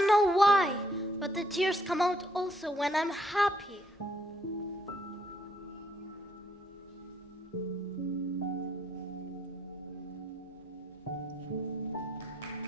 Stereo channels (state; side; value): normal; both; correlation 0.70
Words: know why, but the tears come out also when I'm happy.